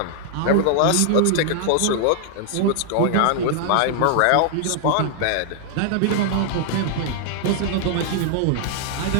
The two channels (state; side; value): different; both; correlation -0.01